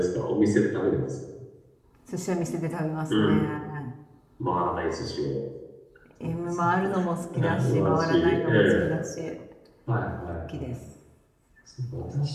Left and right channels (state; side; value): identical; both; correlation 1.00